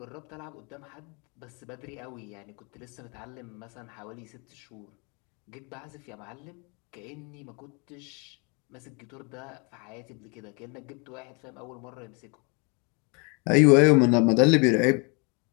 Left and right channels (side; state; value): right; quieter; 32.4 dB